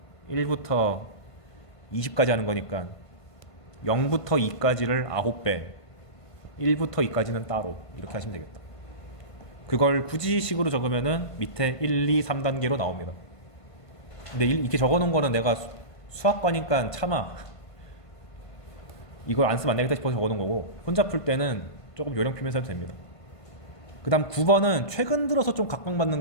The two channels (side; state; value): right; late; 1.5 ms